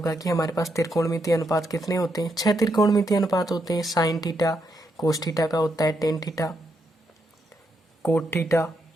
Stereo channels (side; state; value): both; normal; correlation 0.80